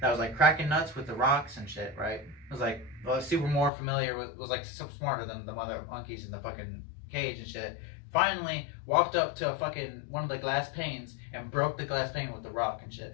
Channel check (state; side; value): drops out; right; at 3.7 s